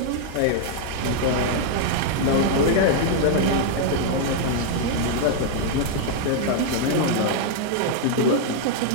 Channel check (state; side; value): different; both; correlation -0.01